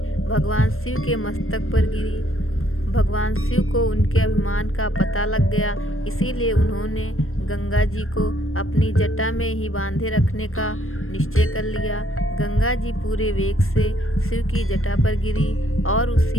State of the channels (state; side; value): late; right; 0.62 ms